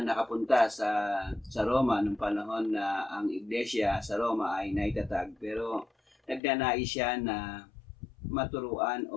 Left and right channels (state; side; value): drops out; right; at 6.4 s